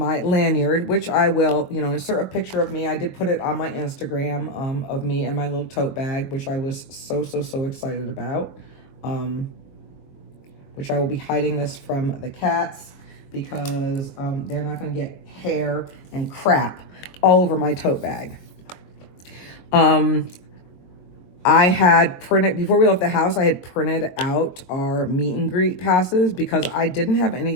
lanyard, which I will, you know, insert a picture of me. I did put it on my Instagram of me and my little tote bag, which I was so excited about. Which I will be hiding this from the cats because they're not going to get hair and crap all over my tote bag. I had printed, before we left the house, I had printed out our meet and greet passes because I didn't have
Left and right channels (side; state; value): right; late; 22 ms